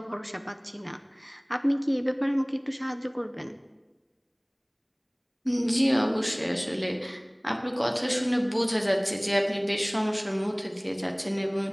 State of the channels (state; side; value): identical; both; correlation 1.00